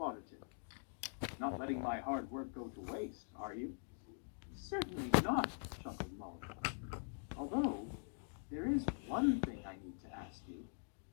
Not letting my hard work go to waste, are you?" "Certainly not," chuckled Molly. "Although, there is one thing I need to ask you."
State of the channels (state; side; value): silent; right; digital silence